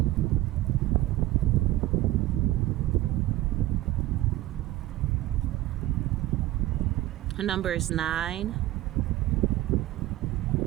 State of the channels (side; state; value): left; quieter; 16.0 dB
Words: Her number is 9.